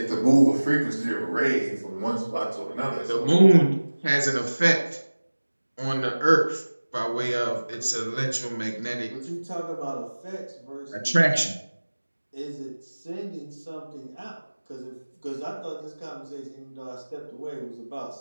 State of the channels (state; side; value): inverted; both; correlation -1.00